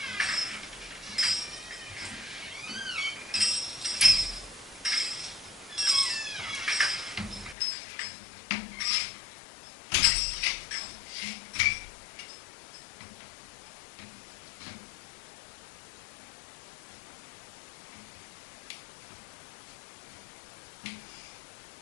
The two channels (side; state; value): right; drops out; at 7.6 s